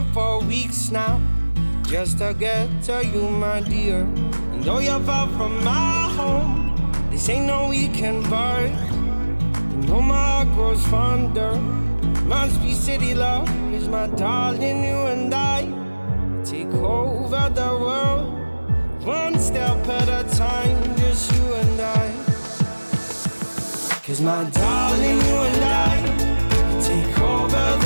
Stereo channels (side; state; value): both; inverted; correlation -1.00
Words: for weeks now, just to get to you, my dear. And though you're far from my home, this ain't no weekend bar. You know my heart grows fonder. Must be city love, 'cause my darling, you and I take over the world, one step at a time, just you and I. 'Cause my darling, you and I take over